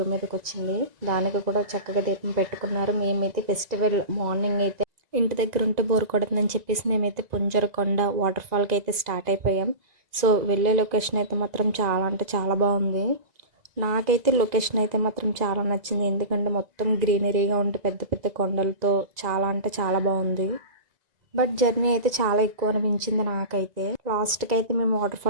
మీదకి వచ్చింది. దానికి కూడా చక్కగా దీపం పెట్టుకున్నారు. మేమైతే ఫెస్టివల్ మార్నింగ్ అయితే ఇంటి దగ్గర ఉంటే బోర్ కొడుతుందని చెప్పేసి మేమైతే పుంజరకొండ వాటర్ ఫాల్కి అయితే స్టార్ట్ అయిపోయాం. సో వెళ్ళే లొకేషన్ అయితే మాత్రం చాలా అంటే చాలా బాగుంది. నాకైతే లొకేషన్ అయితే మాత్రం చాలా నచ్చింది. ఎందుకంటే మొత్తం గ్రీనరీగా ఉంటే పెద్ద పెద్ద కొండలతో చాలా అంటే చాలా బాగుంది. బట్ జర్నీ అయితే చాలా ఎక్కువ అనిపించింది నాకైతే. లాస్ట్కి అయితే మేము వాటర్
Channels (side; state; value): left; late; 2.0 ms